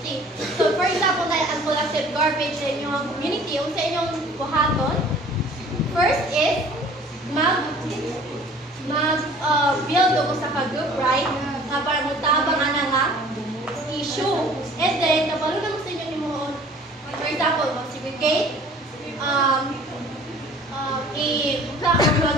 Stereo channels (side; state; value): both; normal; correlation 0.50